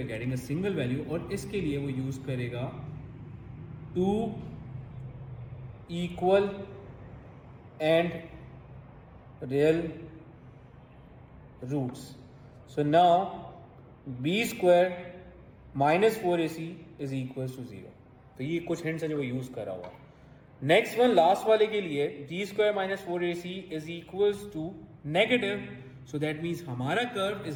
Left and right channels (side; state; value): both; identical; correlation 1.00